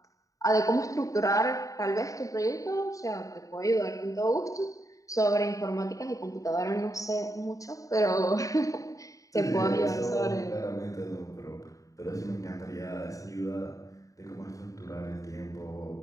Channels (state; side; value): late; right; 0.16 ms